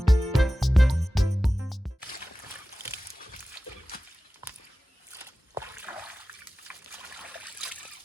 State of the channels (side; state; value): both; normal; correlation 0.96